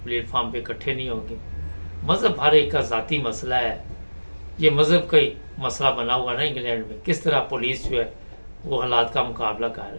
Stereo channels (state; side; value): inverted; both; correlation -1.00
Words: प्लेटफार्म पे इकट्ठे नहीं होंगे, मज़हब हर एक का ज़ाती मसला है। ये मज़हब का ही मसला बना हुआ ना इंग्लैंड में, किस तरह पुलिस जो है वो हालात का मुकाबला कर